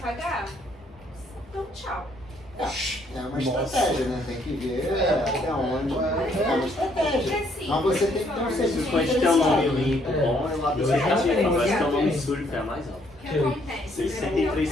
Então tchau. É uma estratégia, né? Tem que ver até onde. É uma estratégia. Mas você tem que ter um Se serviço o cliente tem um nome limpo, bom, é lá do Eu já tarifa, tenho, mas se já tem um nome tenho. sujo, é mais alto. O que acontece?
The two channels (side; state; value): both; normal; correlation 0.68